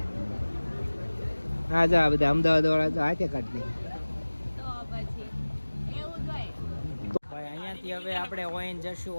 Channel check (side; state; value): both; inverted; correlation -1.00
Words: હા, જા બધા અમદાવાદ વાળા તો હાથે કાઢી દે. ભાઈ અહીંયાથી હવે આપણે ઓયન જશું,